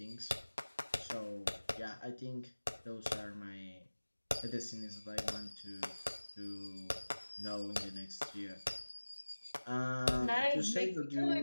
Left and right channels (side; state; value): both; inverted; correlation -1.00